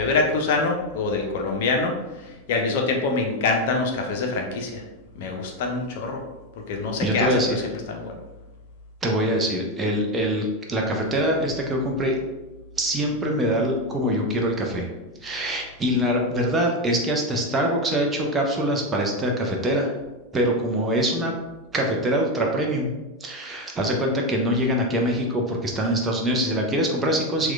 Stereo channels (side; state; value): both; normal; correlation 0.11